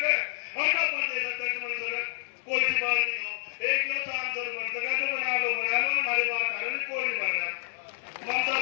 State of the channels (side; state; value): right; silent; digital silence